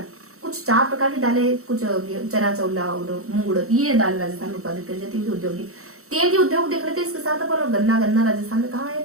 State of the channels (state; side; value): late; left; 0.64 ms